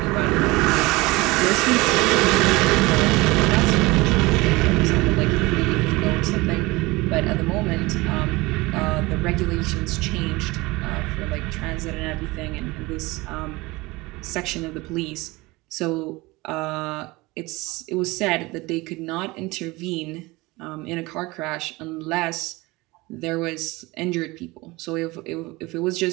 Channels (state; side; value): quieter; left; 22.2 dB